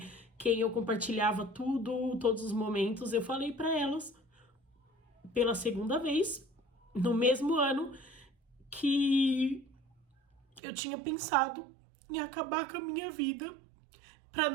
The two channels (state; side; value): drops out; left; at 10.6 s